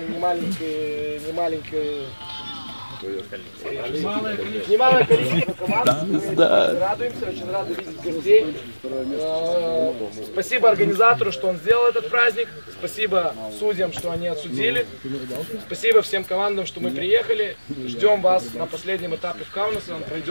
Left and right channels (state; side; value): inverted; both; correlation -1.00